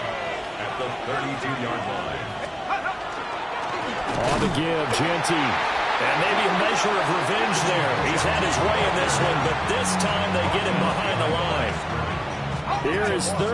The 32-yard line. On the give, Genti. And maybe a measure of revenge there. He's had his way in this one, but this time they get him behind the line. Here is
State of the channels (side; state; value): both; identical; correlation 1.00